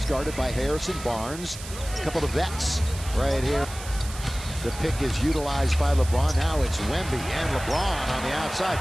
guarded by Harrison Barnes. A couple of vets right here. The pick is utilized by LeBron. Now it's Wemby and LeBron on the outside.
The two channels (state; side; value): noise; right; hiss, 13 dB below the sound